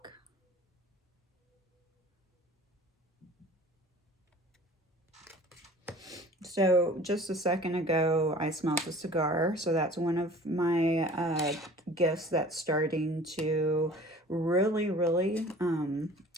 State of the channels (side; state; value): both; normal; correlation 0.46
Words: So just a second ago, I smelled a cigar. So that's one of my gifts that's starting to really